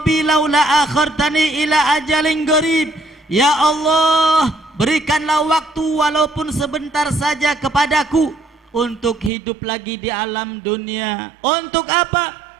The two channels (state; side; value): drops out; left; at 9.3 s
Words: laula akhartani ila ajalin qarib. Ya Allah, berikanlah waktu walaupun sebentar saja kepadaku untuk hidup lagi di alam dunia. Untuk apa?